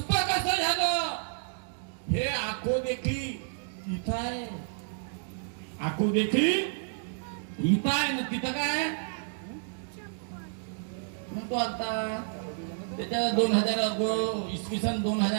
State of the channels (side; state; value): left; silent; digital silence